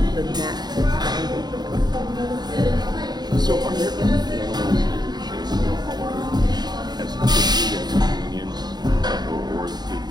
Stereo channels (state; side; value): late; left; 0.20 ms